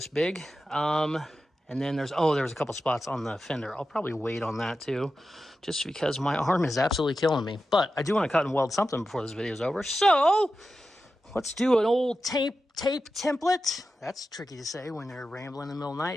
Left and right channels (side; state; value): both; normal; correlation 0.92